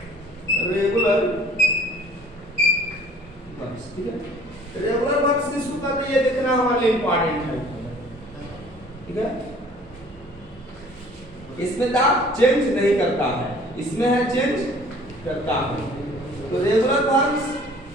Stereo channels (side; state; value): both; normal; correlation 0.53